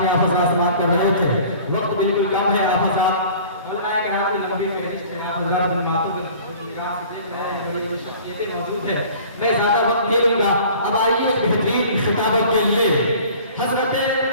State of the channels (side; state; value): both; inverted; correlation -0.47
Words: آپ حضرات سماعت کر رہے تھے، وقت بالکل کم ہے۔ آپ حضرات علماء کرام کی لمبی فہرست ہے، آپ حضرات ان باتوں کو نگاہ سے دیکھ رہے ہیں، بڑی بڑی شخصیتیں موجود ہیں، میں زیادہ وقت نہیں لوں گا۔ اب آئیے بہترین خطابت کے لیے حضرت